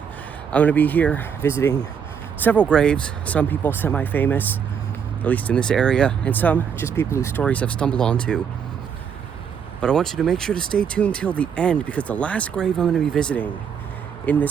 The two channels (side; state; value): left; quieter; 7.3 dB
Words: I'm gonna be here visiting several graves. Some people semi-famous, at least in this area, and some just people whose stories I've stumbled onto. But I want you to make sure to stay tuned till the end, because the last grave I'm going to be visiting in